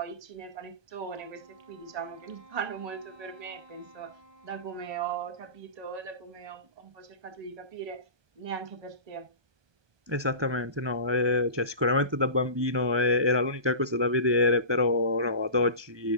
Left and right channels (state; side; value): late; left; 1.2 ms